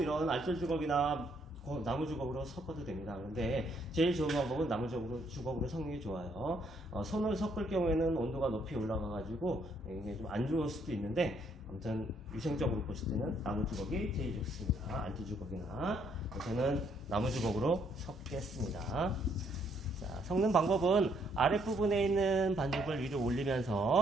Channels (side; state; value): both; normal; correlation 0.70